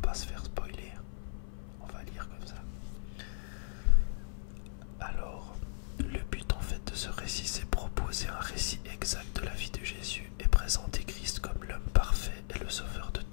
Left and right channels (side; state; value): right; silent; 54 dB below the other